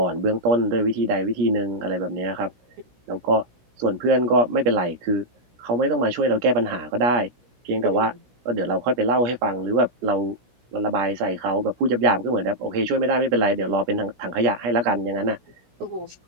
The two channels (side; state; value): left; late; 16 ms